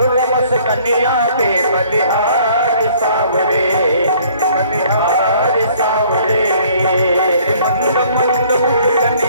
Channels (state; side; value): inverted; both; correlation -0.58